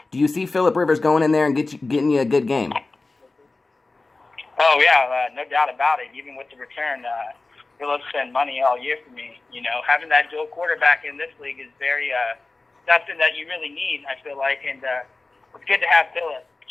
do you see Phillip Rivers going in there and getting you a good game? Oh, yeah, no doubt about it. Even with the return, Phillip spent money all year for me. You know, having that dual quarterback in this league is very something that you really need, I feel like, and it's good to have Phillip.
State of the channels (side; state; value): right; quieter; 3.4 dB